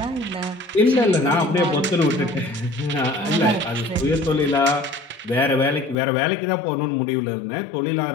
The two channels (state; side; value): drops out; right; at 6.0 s